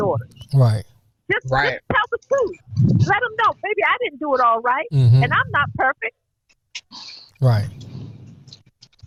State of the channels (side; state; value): both; identical; correlation 1.00